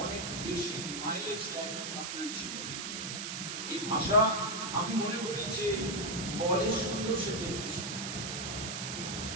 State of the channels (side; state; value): right; noise; hiss, 4 dB below the sound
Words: অনেক বেশি মাইলেজ দেয় আপনার জীবনে। এই ভাষা আমি মনে করি যে বলে সুন্দর সে দেখতে সুন্দর,